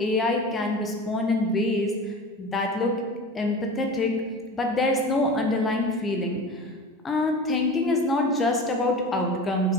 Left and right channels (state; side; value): normal; both; correlation 0.34